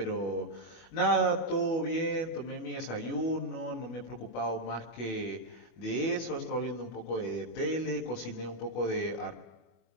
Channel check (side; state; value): right; late; 25 ms